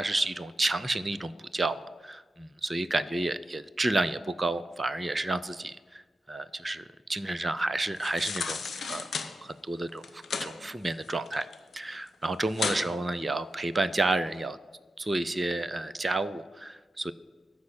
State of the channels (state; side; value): normal; both; correlation 0.91